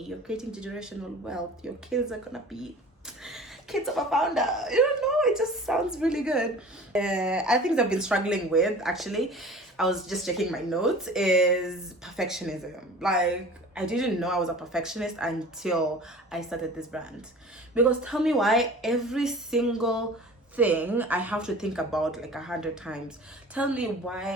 you're creating generational wealth. Your kids are gonna be kids of a founder. It just sounds really good. I think I've been struggling with, actually, I was just checking my notes, is perfectionism. Like, I didn't know I was a perfectionist until I started this brand. Because tell me why every single thing I have to think about like 100 times. Tell me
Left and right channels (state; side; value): normal; both; correlation 0.42